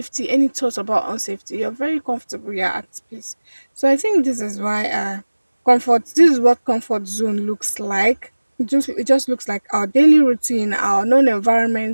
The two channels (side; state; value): both; inverted; correlation -1.00